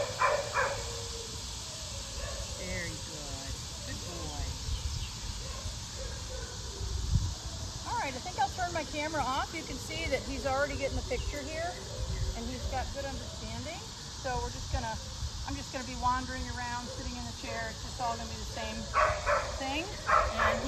Very good. Good boy. All right, I think I'll turn my camera off. You can see that he's already getting the picture here, and he's got good understanding. So I'm just gonna be wandering around, sitting in the chair. It's just all gonna be the same thing. And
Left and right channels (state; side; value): identical; both; correlation 1.00